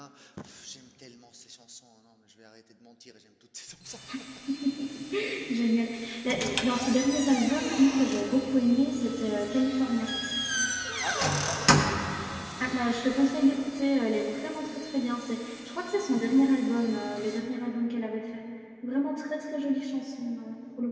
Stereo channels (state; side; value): identical; both; correlation 1.00